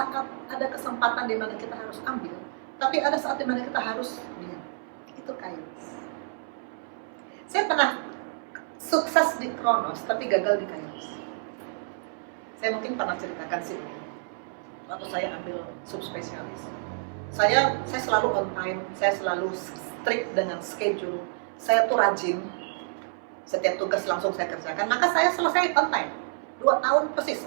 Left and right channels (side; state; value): left; silent; 59 dB below the other